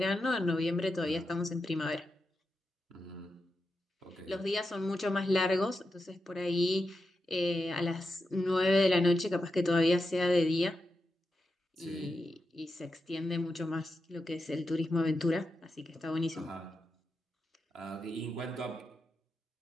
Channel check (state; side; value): normal; both; correlation 0.88